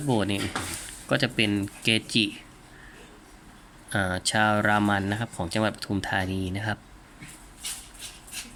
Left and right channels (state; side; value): identical; both; correlation 1.00